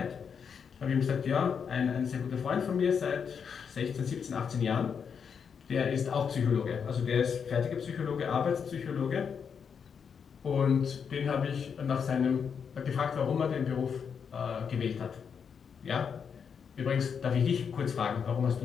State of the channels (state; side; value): quieter; right; 6.7 dB